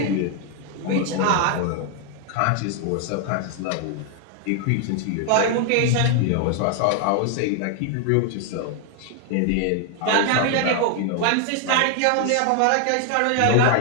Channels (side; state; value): both; different; correlation 0.00